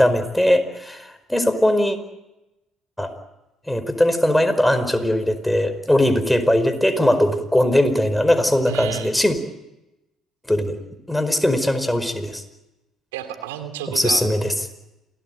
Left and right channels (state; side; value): normal; both; correlation 0.93